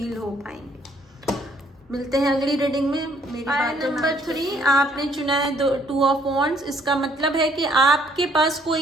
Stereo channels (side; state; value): both; normal; correlation 0.65